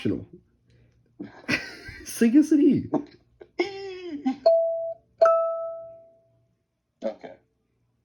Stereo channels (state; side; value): identical; both; correlation 1.00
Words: Sing us an E. Okay.